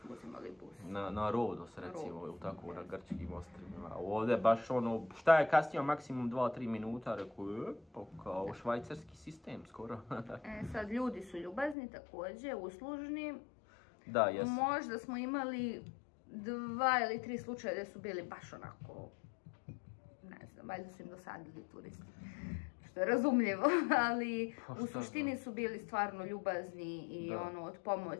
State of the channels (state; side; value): drops out; right; at 11.8 s